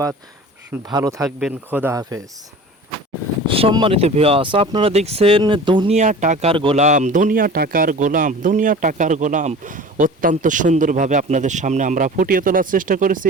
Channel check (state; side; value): normal; both; correlation 0.39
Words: ভালো থাকবেন। খোদা হাফেজ। সম্মানিত ভিউয়ার্স, আপনারা দেখছেন দুনিয়া টাকার গোলাম, দুনিয়া টাকার গোলাম, দুনিয়া টাকার গোলাম। অত্যন্ত সুন্দরভাবে আপনাদের সামনে আমরা ফুটিয়ে তোলার চেষ্টা করেছি।